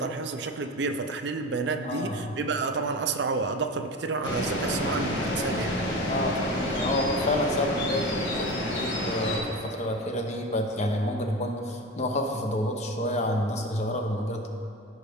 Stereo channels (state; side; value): normal; both; correlation 0.27